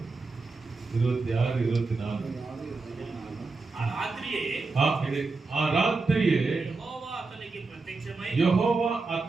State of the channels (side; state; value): left; quieter; 3.9 dB